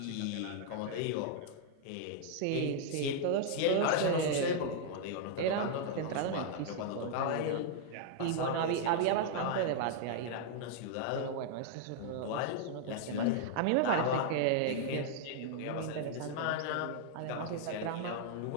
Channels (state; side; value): different; both; correlation -0.01